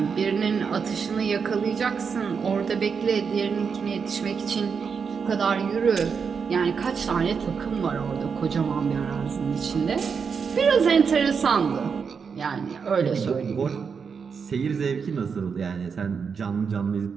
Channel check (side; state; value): left; quieter; 6.0 dB